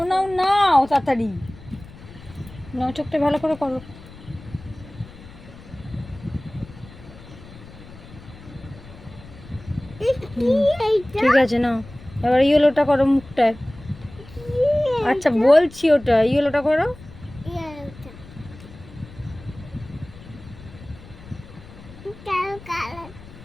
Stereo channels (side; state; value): left; noise; rumble, 19 dB below the sound